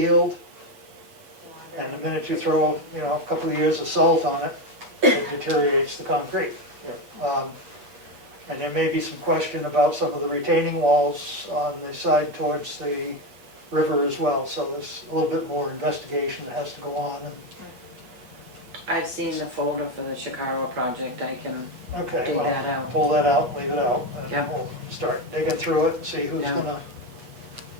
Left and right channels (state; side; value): late; left; 8.2 ms